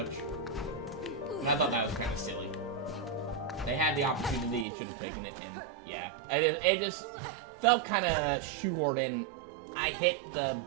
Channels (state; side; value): drops out; left; at 4.7 s